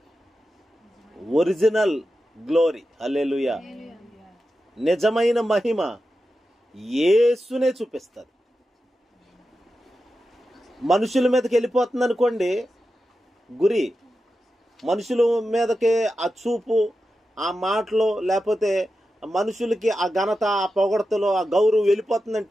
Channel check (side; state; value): both; normal; correlation 0.91